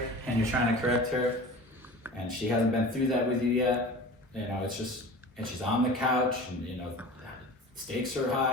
and you're trying to correct her, and she hasn't been through that with you yet, you know, it's just, and she's on the couch, and you know, stakes are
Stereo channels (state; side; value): normal; both; correlation 0.37